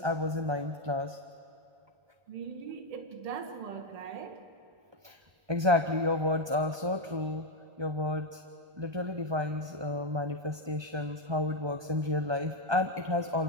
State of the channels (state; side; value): late; left; 1.2 ms